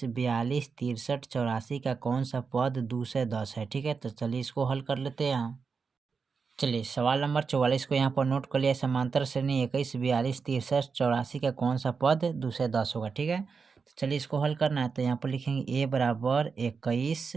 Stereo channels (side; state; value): left; quieter; 5.3 dB